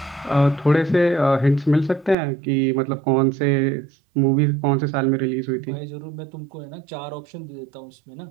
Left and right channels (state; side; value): drops out; left; at 2.1 s